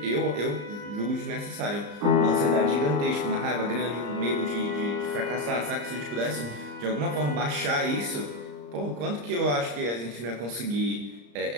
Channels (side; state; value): left; late; 34 ms